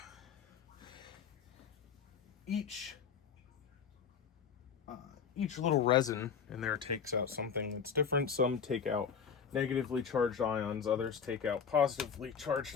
each little resin in there takes out something that's different. Some take out negatively charged ions, others take out positively charged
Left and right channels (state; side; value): quieter; right; 6.7 dB